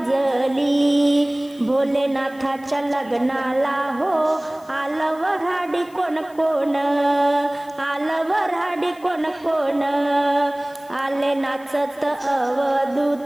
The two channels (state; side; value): noise; left; hiss, 27 dB below the sound